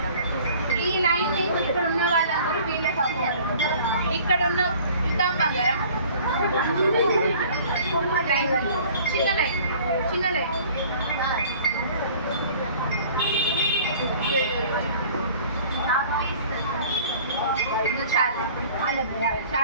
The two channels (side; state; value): both; inverted; correlation -0.50